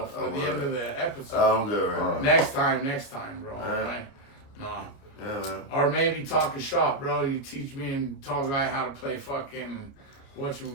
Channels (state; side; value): late; right; 29 ms